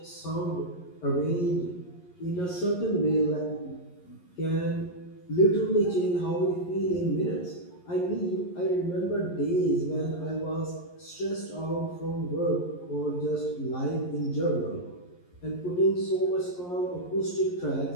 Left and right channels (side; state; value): right; late; 11 ms